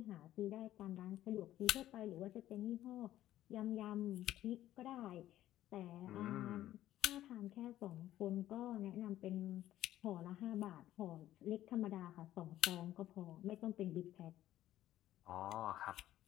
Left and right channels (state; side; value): quieter; right; 13.5 dB